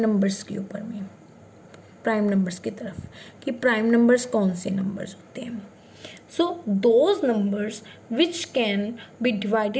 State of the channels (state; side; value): identical; both; correlation 1.00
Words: के ऊपर में, प्राइम नंबर्स की तरफ, कि प्राइम नंबर्स कौन से नंबर्स होते हैं। So those numbers which can be